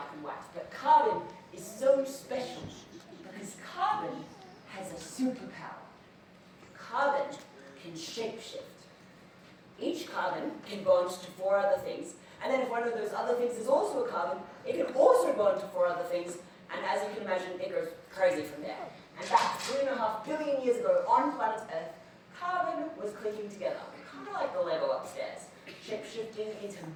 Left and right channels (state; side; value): identical; both; correlation 1.00